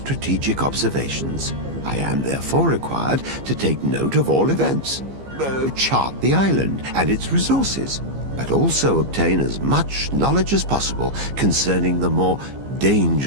observations. I am therefore required to take note of all events, chart the island and its resources, but also obtain as much knowledge as possible concerning the more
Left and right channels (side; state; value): left; late; 15 ms